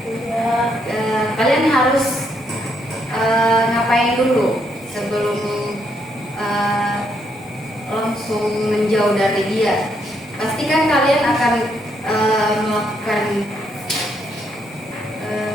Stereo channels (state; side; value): normal; both; correlation 0.75